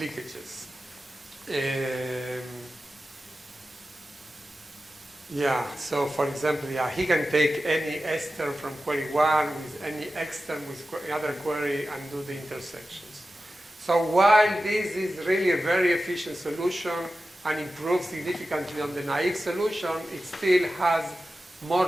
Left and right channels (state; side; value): normal; both; correlation 0.93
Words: Yeah, so for example, yeah, he can take any S term from query 1 with any X term with another query and do the intersections. So while this is really a very efficient solution and improves significantly on the naive solution, it still has more